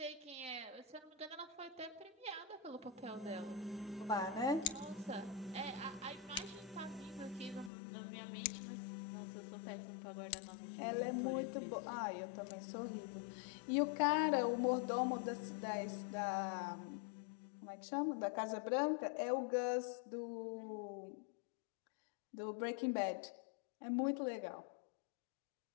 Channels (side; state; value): right; drops out; at 7.7 s